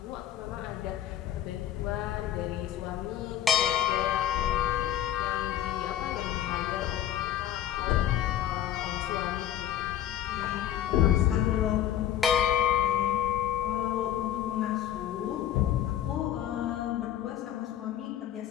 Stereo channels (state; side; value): quieter; right; 11.2 dB